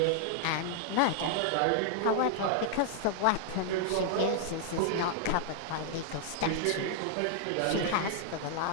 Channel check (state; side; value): different; both; correlation 0.00